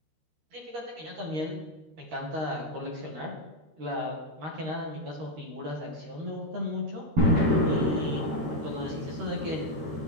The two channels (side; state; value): left; late; 13 ms